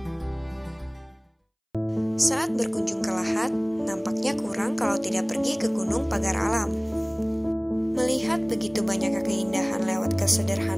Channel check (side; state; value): both; identical; correlation 1.00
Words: Saat berkunjung ke Lahat, nampaknya kurang kalau tidak pergi ke Gunung Pagar Alam. Melihat begitu banyak keindahan lewat